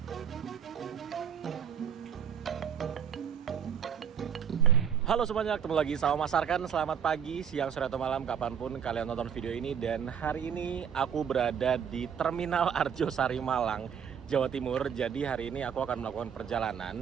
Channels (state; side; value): quieter; left; 7.9 dB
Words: Halo semuanya, ketemu lagi sama Mas Arkan. Selamat pagi, siang, sore, atau malam, kapanpun kalian nonton video ini. Dan hari ini aku berada di Terminal Arjosari Malang, Jawa Timur. Jadi hari ini aku akan melakukan